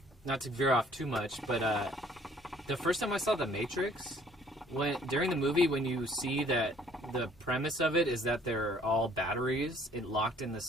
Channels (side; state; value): both; normal; correlation 0.58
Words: not to veer off too much, but the first time I saw The Matrix, during the movie when you see that the premise of it is that they're all batteries locked in